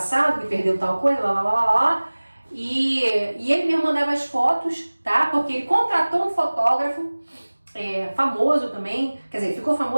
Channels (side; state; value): both; inverted; correlation -1.00